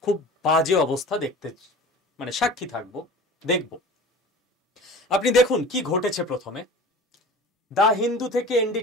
খুব বাজে অবস্থা দেখতে সাক্ষী থাকবো, দেখব। আপনি দেখুন কি ঘটেছে। প্রথমে দা হিন্দু থেকে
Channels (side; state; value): both; normal; correlation 0.39